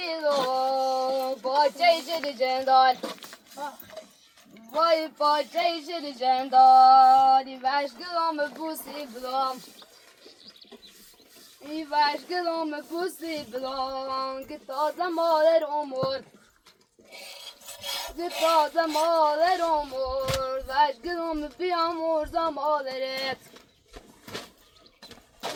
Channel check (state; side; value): identical; both; correlation 1.00